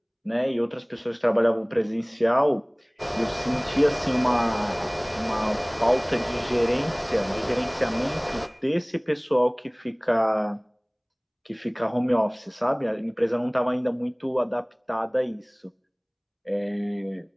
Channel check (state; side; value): identical; both; correlation 1.00